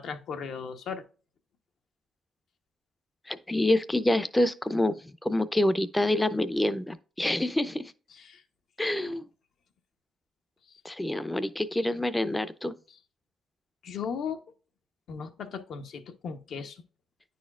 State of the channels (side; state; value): both; normal; correlation 0.92